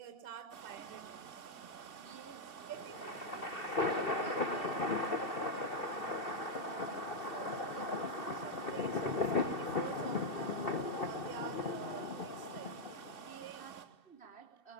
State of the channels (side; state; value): right; late; 2.7 ms